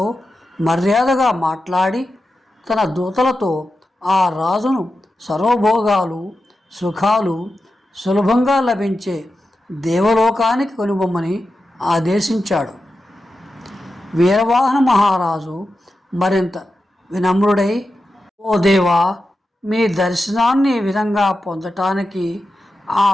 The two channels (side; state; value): both; normal; correlation 0.91